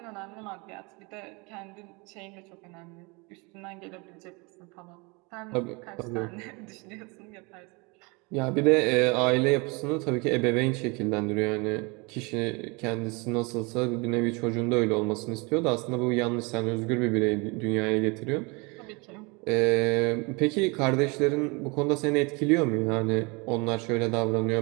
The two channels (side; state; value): left; quieter; 28.5 dB